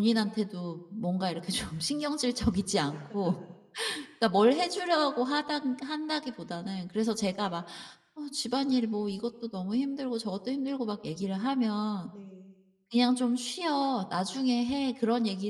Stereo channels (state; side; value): identical; both; correlation 1.00